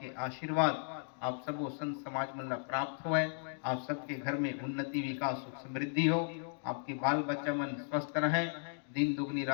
आशीर्वाद आप सबो संत समाज मन ला प्राप्त हुए, आप सबके घर में उन्नति विकास सुख समृद्धि हो, आपके बाल बच्चा मन स्वस्थ रहे, दिन दुगनी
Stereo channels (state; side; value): silent; right; digital silence